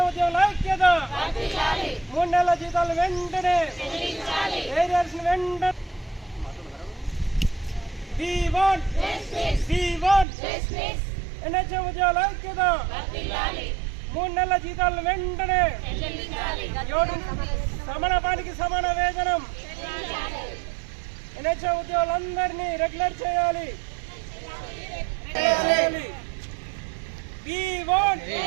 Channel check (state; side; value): drops out; left; at 10.2 s